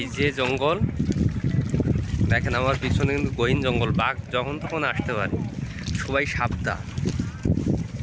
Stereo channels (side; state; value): both; identical; correlation 1.00